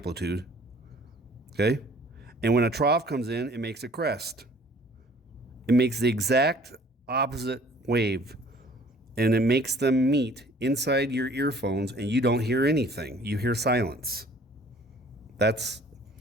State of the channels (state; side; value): normal; both; correlation 0.54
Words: Okay? And when a trough comes in, it makes a crest. It makes the exact opposite wave, and it makes them meet inside your earphones, and you don't hear anything. You hear silence. That's